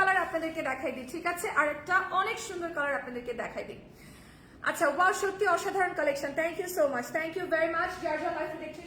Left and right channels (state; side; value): identical; both; correlation 1.00